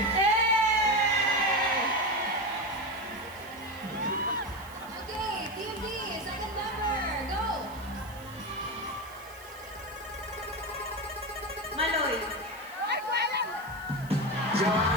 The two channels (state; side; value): noise; right; hiss, 20 dB below the sound